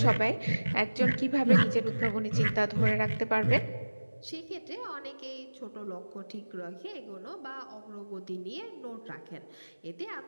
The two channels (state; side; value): inverted; both; correlation -1.00